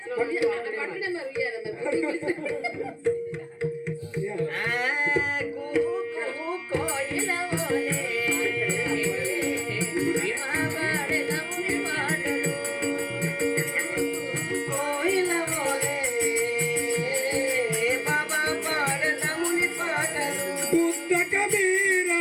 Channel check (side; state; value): both; identical; correlation 1.00